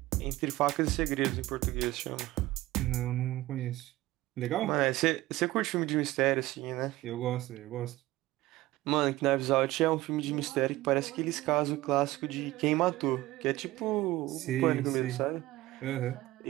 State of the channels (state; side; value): quieter; left; 17.5 dB